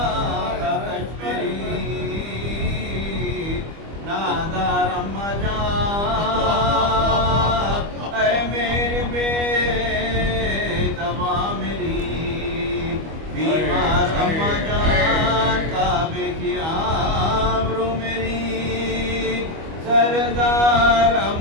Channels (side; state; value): left; late; 25 ms